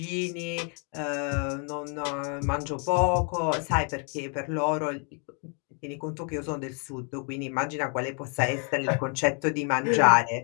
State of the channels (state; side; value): quieter; right; 38.5 dB